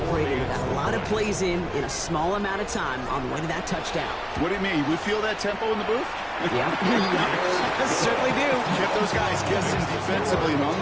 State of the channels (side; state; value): both; identical; correlation 1.00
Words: They got a lot of plays in a small amount of time on the way to that touchdown. What do you mean? We feel that tempo in the booth? Yeah, certainly do. Kept those guys guessing defensively and on